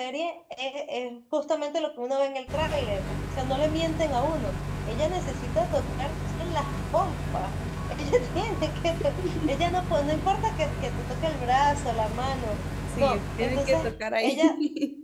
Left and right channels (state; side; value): identical; both; correlation 1.00